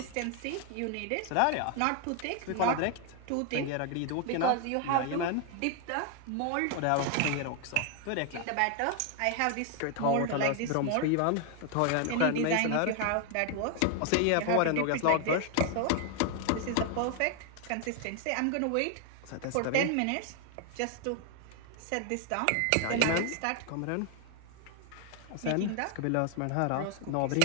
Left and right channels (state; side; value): different; both; correlation 0.00